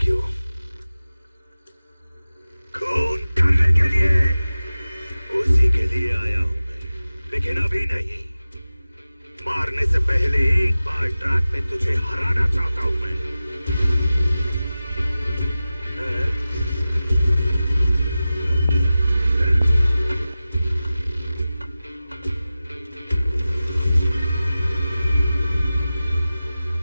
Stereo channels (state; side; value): inverted; both; correlation -0.95